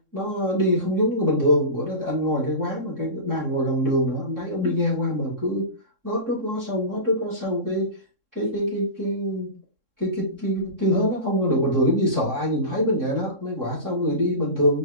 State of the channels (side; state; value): left; late; 3.7 ms